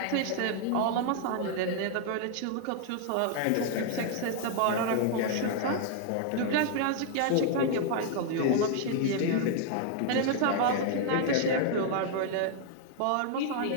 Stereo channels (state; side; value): different; both; correlation 0.00